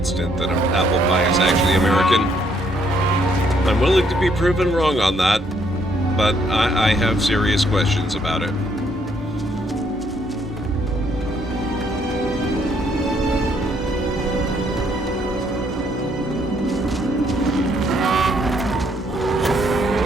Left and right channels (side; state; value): both; normal; correlation 0.69